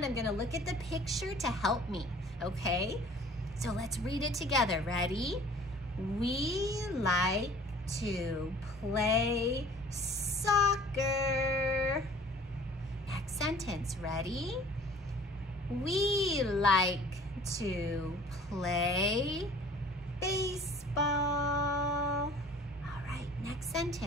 I'm gonna look at the picture to help me, okay? So let's read it together, ready? We like to play soccer. Next sentence, ready? We like to play baseball. All right, next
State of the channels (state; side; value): normal; both; correlation 0.50